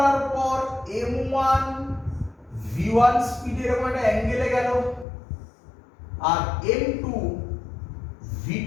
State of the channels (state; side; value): drops out; right; at 5.1 s